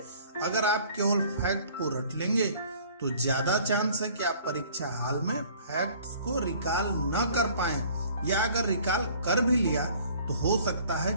अगर आप केवल फैक्ट को रट लेंगे तो ज्यादा चांस है कि आप परीक्षा हाल में फैक्ट्स को रिकॉल न कर पाएं, या अगर रिकॉल कर भी लिया तो हो सकता है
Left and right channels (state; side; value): inverted; both; correlation -0.53